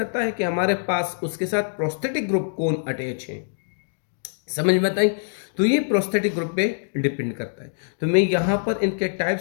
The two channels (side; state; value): right; silent; digital silence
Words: है कि हमारे पास उसके साथ प्रोस्थेटिक ग्रुप कौन अटैच है। समझ में बताई। तो ये प्रोस्थेटिक ग्रुप पे डिपेंड करता है। तो मैं यहाँ पर इनके